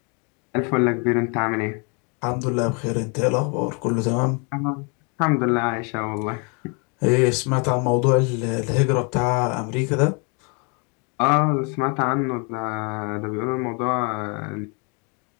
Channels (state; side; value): quieter; right; 34.5 dB